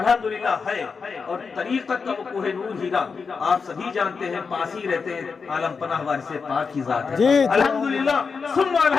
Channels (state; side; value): quieter; right; 5.2 dB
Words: ہے، اور طریقت کا وہ کوہ نور ہیرا آپ سبھی جانتے ہیں، پاس ہی رہتے ہیں، عالم پناہ وارث پاک کی ذات ہے الحمدللہ ثم